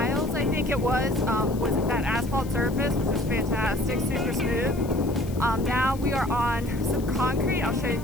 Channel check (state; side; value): noise; left; hiss, 20 dB below the sound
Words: I think it was that asphalt surface, which was fantastic, super smooth. Now we are on some concrete. I'll show it